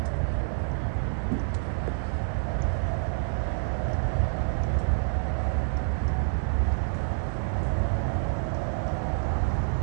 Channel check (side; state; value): left; silent; 60 dB below the other